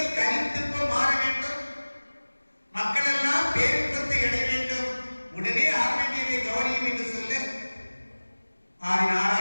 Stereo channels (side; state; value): both; inverted; correlation -1.00